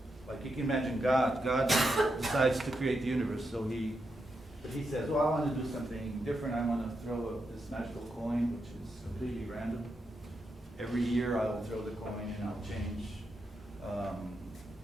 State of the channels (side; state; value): both; normal; correlation 0.85